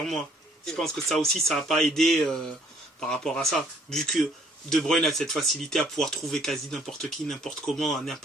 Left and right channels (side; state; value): both; normal; correlation 0.62